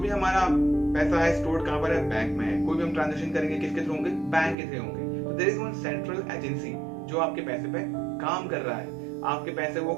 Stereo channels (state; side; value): drops out; left; at 4.5 s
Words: हमारा पैसा है स्टोर्ड कहां पर है? बैंक में है। कोई भी हम ट्रांजैक्शन करेंगे किसके थ्रू होंगे? बैंक के थ्रू होंगे। तो there is one central agency जो आपके पैसे पे काम कर रहा है। आपके पैसे वो